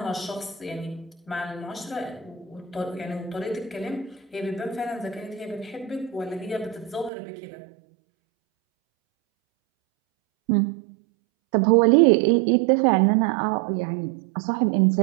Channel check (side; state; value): left; drops out; at 7.1 s